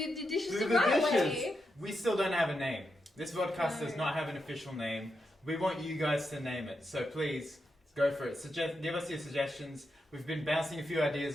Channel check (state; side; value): normal; both; correlation 0.85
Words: the dishes the the right dishes. way. We still don't have a name. This podcast does not have an official name. We want you guys to name it, so please go for it. Give us your suggestions. We've been bouncing a few